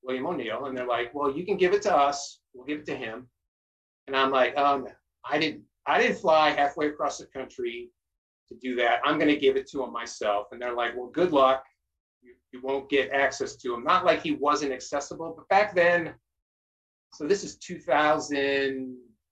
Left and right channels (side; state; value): both; identical; correlation 1.00